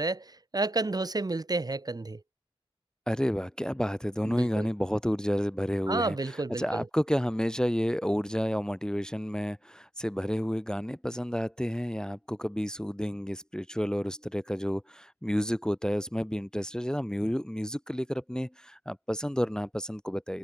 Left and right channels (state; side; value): normal; both; correlation 0.92